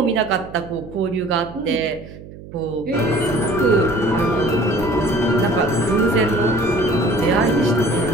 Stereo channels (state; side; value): noise; right; hum, 16 dB below the sound